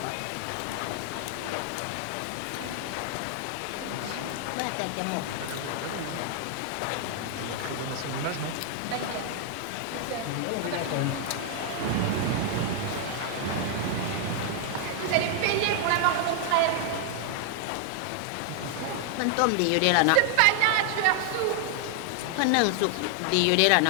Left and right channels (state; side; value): different; both; correlation 0.00